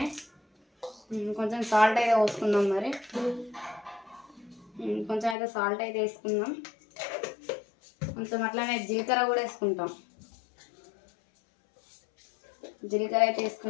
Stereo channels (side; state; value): right; drops out; at 5.4 s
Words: కొంచెం సాల్ట్ అయితే పోసుకుందాం. మరి కొంచెం అయితే సాల్ట్ అయితే వేసుకుందాం. కొంచెం అట్లానే జీలకర్ర కూడా వేసుకుంటాం. జీలకర్ర అయితే